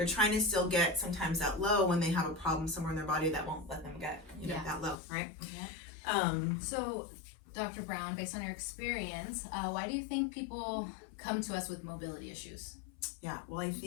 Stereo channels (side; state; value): right; drops out; at 5.0 s